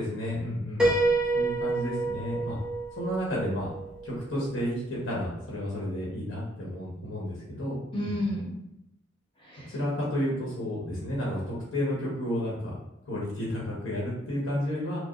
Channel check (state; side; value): normal; both; correlation 0.68